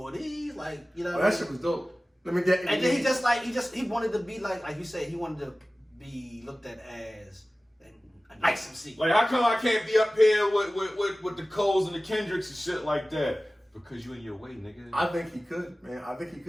of these, like you know. Oh, that shit was dope. Let me get. And then he wanted to be like you said, he wanted to be looked at as a nice MC. Like, how come I can't be up here with the Coles and the Kendricks and shit like that? Because you in your way, nigga. I think he could, man. I think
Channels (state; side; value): normal; both; correlation 0.97